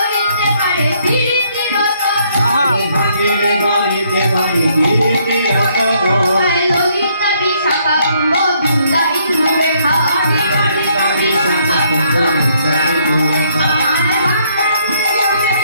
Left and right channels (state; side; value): inverted; both; correlation -0.68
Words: পারে বিরতি ললিতা বিশাখা কুম্ভ দুর্গা ইন্দ্র রেখা